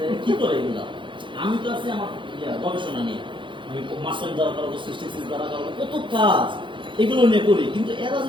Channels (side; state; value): left; late; 0.24 ms